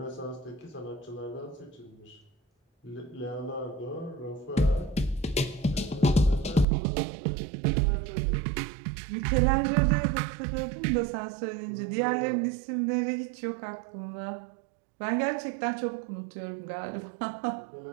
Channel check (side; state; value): left; drops out; at 6.7 s